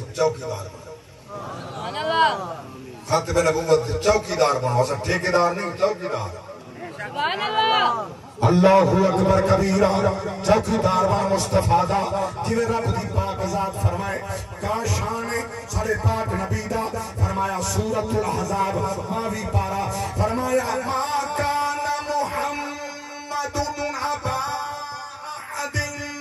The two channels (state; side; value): identical; both; correlation 1.00